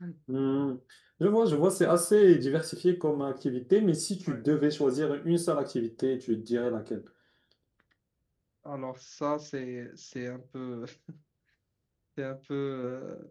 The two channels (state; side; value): identical; both; correlation 1.00